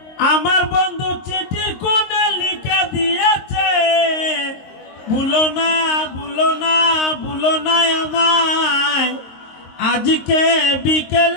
আমার বন্ধু চিঠির কোণে লিখে দিয়েছে, ভুলো না ভুলো না ভুলো না আমায়। আজকে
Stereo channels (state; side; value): late; right; 22 ms